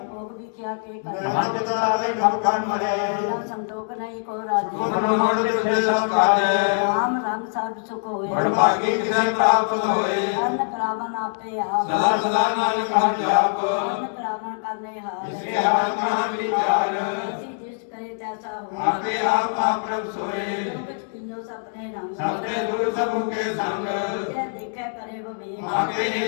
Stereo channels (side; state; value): right; silent; digital silence